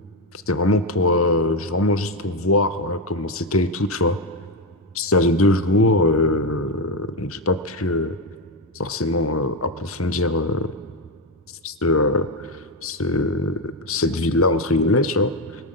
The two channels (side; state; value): both; normal; correlation 0.09